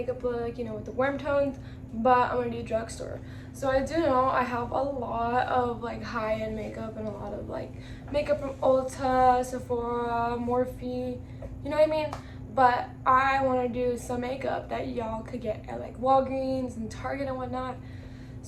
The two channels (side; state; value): both; identical; correlation 1.00